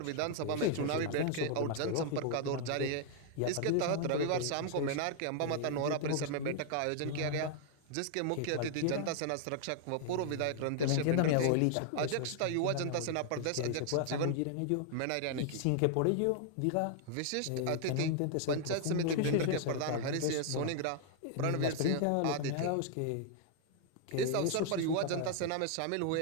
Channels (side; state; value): both; different; correlation 0.00